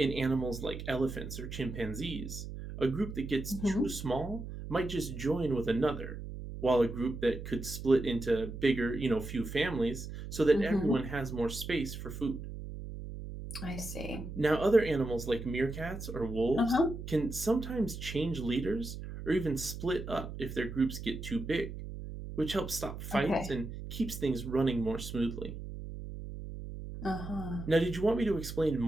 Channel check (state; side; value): noise; right; hum, 9 dB below the sound